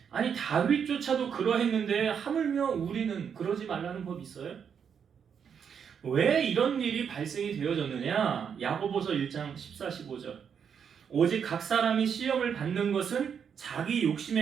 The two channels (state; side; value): quieter; left; 7.3 dB